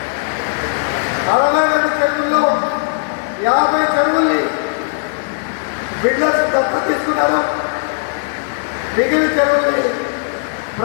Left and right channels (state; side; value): silent; right; 61 dB below the other